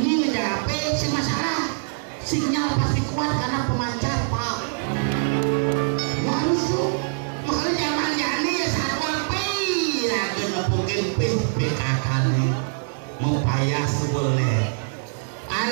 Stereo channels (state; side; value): silent; left; 63 dB below the other